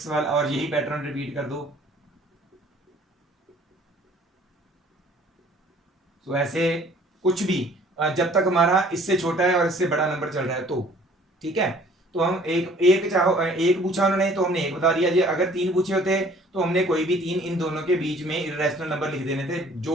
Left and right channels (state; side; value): normal; both; correlation 0.55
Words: वाला, और यही पैटर्न रिपीट कर दो। तो ऐसे कुछ भी जब तक हमारा इससे छोटा है और इससे बड़ा नंबर चल रहा है तो ठीक है। तो हम एक एक चाहो एक पूछा उन्होंने तो हमने एक बता दिया जी, अगर तीन पूछे होते तो हमने कोई भी तीन इन दोनों के बीच में इरेशनल नंबर लिख देने थे